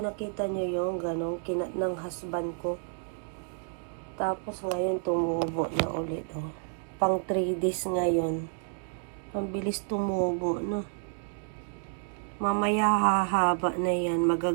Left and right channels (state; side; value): silent; left; 56 dB below the other